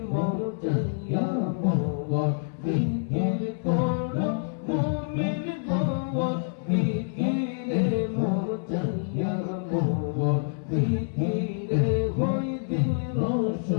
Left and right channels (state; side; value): silent; right; 58 dB below the other